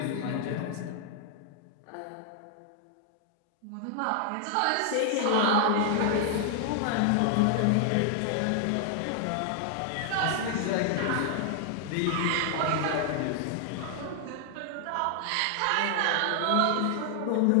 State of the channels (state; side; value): different; both; correlation 0.00